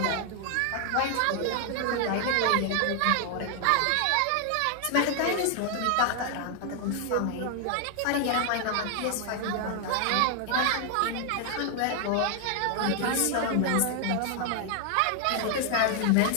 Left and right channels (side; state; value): both; different; correlation 0.00